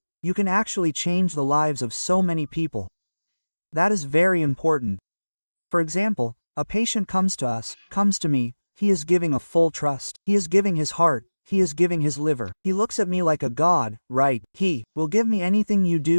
You can actually change the lives of so many people. That is very important. For example, a patient comes to me, he is giving a full trust. He is giving his heart, he is giving his liver. He looks at me like a god, right? He will give me anything you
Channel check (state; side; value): inverted; both; correlation -1.00